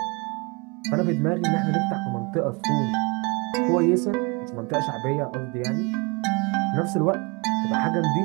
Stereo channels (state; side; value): quieter; left; 29.8 dB